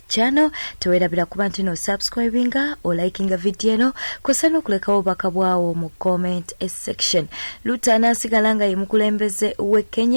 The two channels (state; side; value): inverted; both; correlation -1.00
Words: channel, teweerabira kuba nti no subscribinga o likinga video eno kosa n'okulekawo obubaka bwawo mu comment section. Ruto anasigala nga ye mukulembeze we